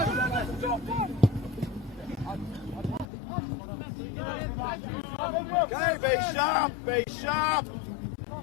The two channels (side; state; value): right; drops out; at 3.1 s